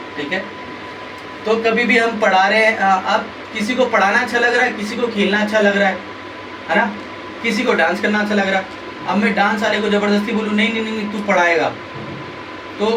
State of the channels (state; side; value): identical; both; correlation 1.00